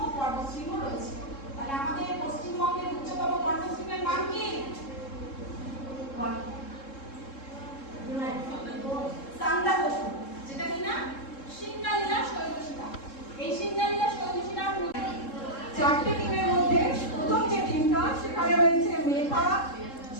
পর্বতশৃঙ্গ রয়েছে। তাহলে আমাদের পশ্চিমবঙ্গের উচ্চতম পর্বতশৃঙ্গের নাম কি? সান্দাকফু, যেটা কিনা সিঙ্গালীলা শৈলশিলা। এই সিঙ্গালীলা শৈলশিলার চারটে টিমের মধ্যে প্রথম যে টিমটা, সেখানে রয়েছে মেঘা,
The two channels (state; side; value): late; right; 3.7 ms